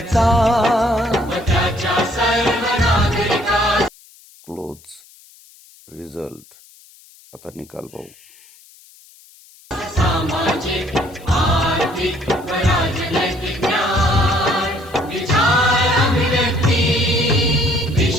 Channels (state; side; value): noise; left; hiss, 25 dB below the sound